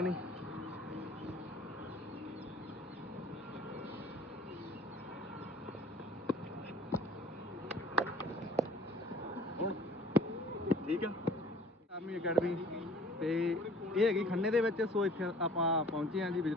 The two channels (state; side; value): normal; both; correlation 0.50